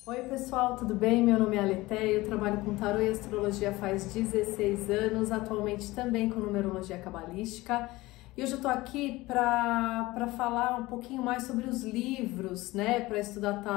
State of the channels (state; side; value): quieter; right; 19.8 dB